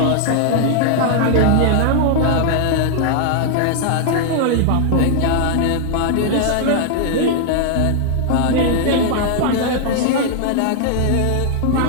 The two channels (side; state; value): both; different; correlation 0.00